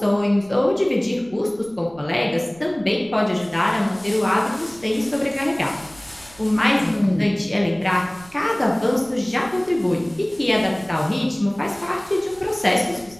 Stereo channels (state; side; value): noise; right; rumble, 24 dB below the sound